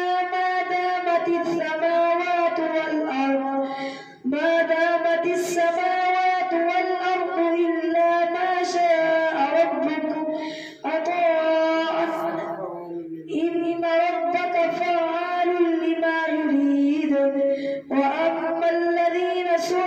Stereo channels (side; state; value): both; identical; correlation 1.00